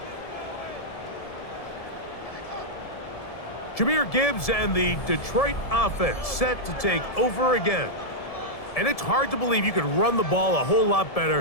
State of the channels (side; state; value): right; late; 1.7 ms